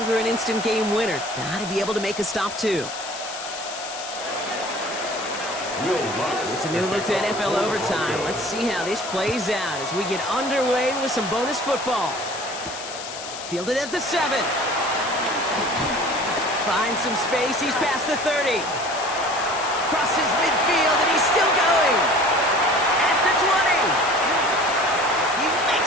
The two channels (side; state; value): left; noise; hiss, 10 dB below the sound